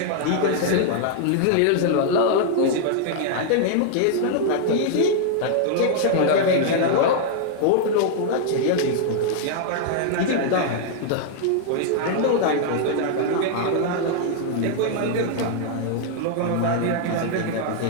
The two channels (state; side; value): different; both; correlation -0.01